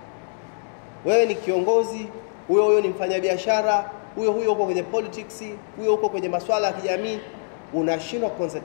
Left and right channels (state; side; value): silent; right; digital silence